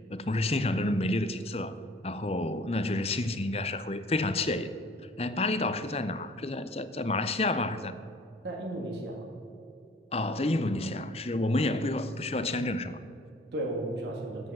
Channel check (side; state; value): both; normal; correlation 0.51